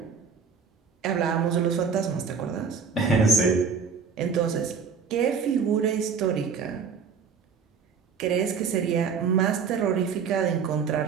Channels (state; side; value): quieter; left; 6.0 dB